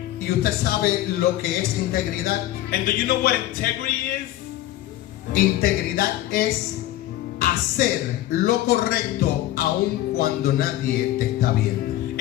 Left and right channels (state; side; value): quieter; right; 14.4 dB